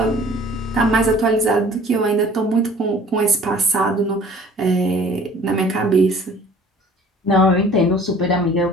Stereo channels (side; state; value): both; normal; correlation 0.50